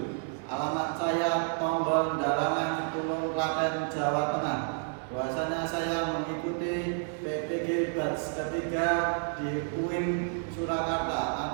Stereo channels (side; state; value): left; silent; 56 dB below the other